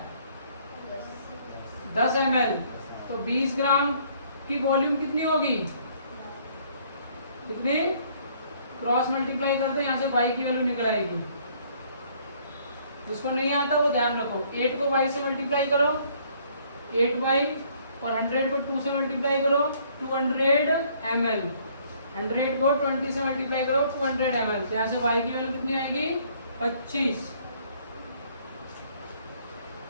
10 ml। तो 20 ग्राम की वॉल्यूम कितनी होगी, कितनी, क्रॉस मल्टीप्लाई कर दो, यहाँ से y की वैल्यू निकल आएगी। जिसको नहीं आता वो ध्यान रखो, 8 को y से मल्टीप्लाई करो 8y, और 100 को 2 से मल्टीप्लाई करो 200 ml, 100 को 20 से मल्टीप्लाई करो 200 ml। तो यहाँ से y की वैल्यू कितनी आएगी, 25।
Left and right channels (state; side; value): inverted; both; correlation -0.62